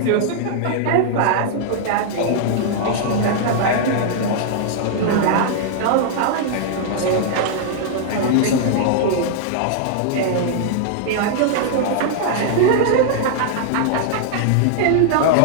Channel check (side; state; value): both; different; correlation -0.01